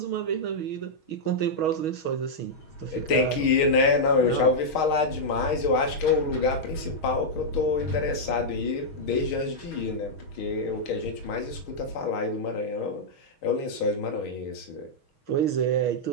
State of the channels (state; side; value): late; right; 6.3 ms